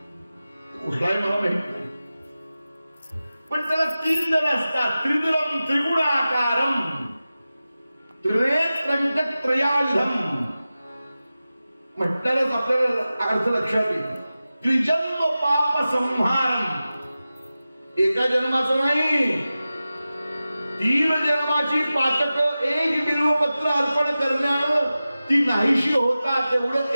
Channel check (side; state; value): both; inverted; correlation -0.95